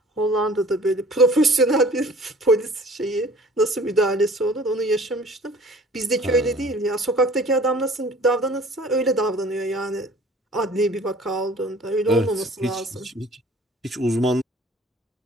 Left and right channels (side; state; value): both; normal; correlation 0.49